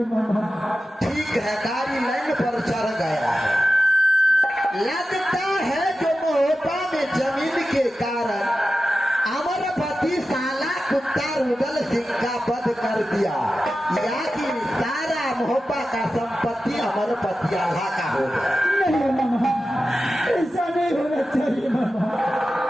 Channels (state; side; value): normal; both; correlation 0.93